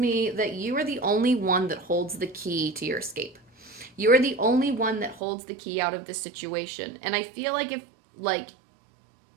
that you are the only one that holds the key to your escape. You are the only one that holds the key out of this situation. And I feel like if, like,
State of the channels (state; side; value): drops out; left; at 5.2 s